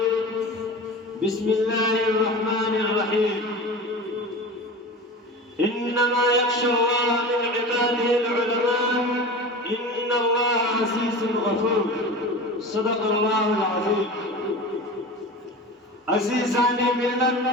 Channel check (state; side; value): normal; both; correlation 0.32